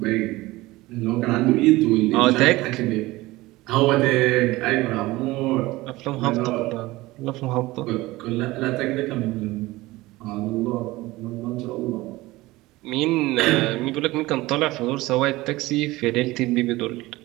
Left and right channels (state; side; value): quieter; left; 19.4 dB